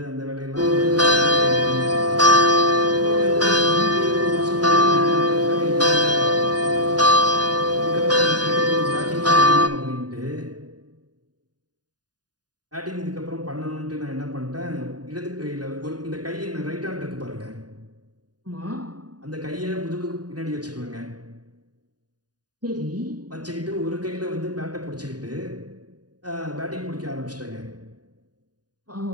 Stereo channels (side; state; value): left; late; 0.69 ms